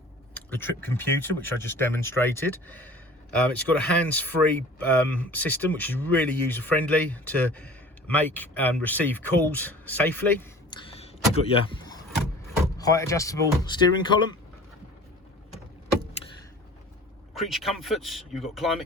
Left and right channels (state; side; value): normal; both; correlation 0.43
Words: the trip computer, which I just demonstrated. It's got a hands-free system, which is really user-friendly to make and receive calls safely. You've got your height adjustable steering column, creature comforts, you've got